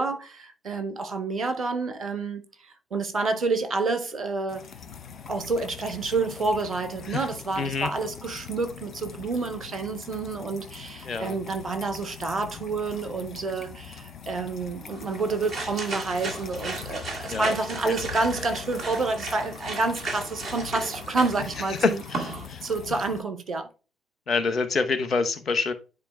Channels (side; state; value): both; normal; correlation 0.67